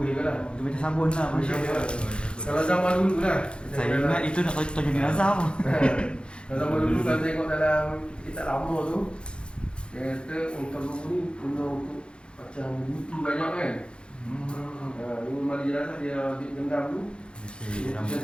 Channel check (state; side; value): late; right; 0.055 ms